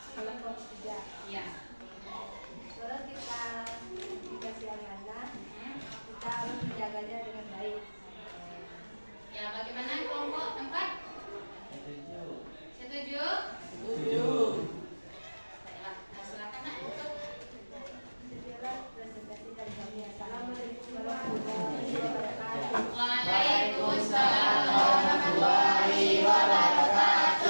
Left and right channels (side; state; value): both; inverted; correlation -1.00